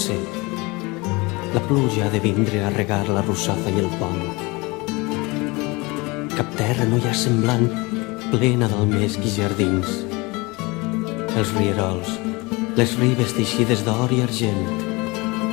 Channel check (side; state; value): right; quieter; 24.9 dB